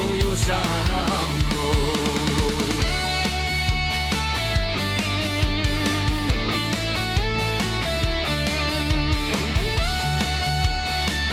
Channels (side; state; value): both; identical; correlation 1.00